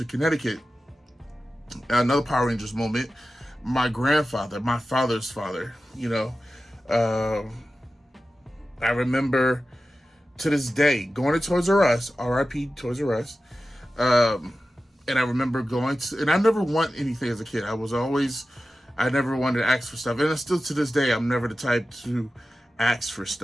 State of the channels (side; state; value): both; normal; correlation 0.94